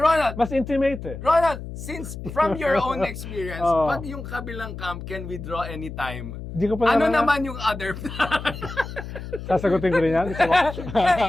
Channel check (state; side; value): noise; left; hum, 10 dB below the sound